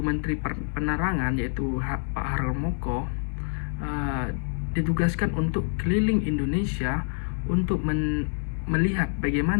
Menteri Penerangan yaitu Pak Harmoko ditugaskan untuk keliling Indonesia untuk melihat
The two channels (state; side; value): silent; right; 60 dB below the other